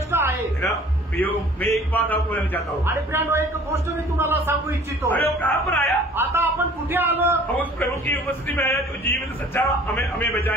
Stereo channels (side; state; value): both; normal; correlation 0.51